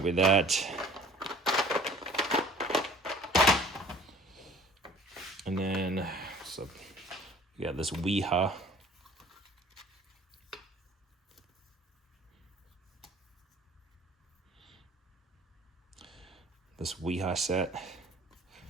with that. And then, so we got this Weeha. This Weeha set. I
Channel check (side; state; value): both; normal; correlation 0.49